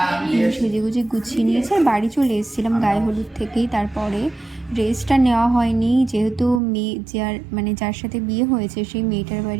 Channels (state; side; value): drops out; left; at 6.6 s